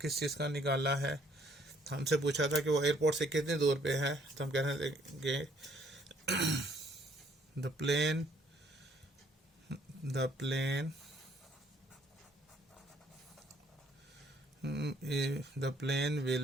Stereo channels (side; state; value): both; normal; correlation 0.64